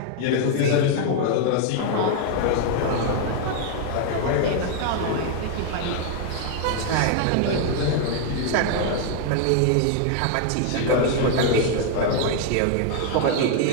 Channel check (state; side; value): different; both; correlation 0.00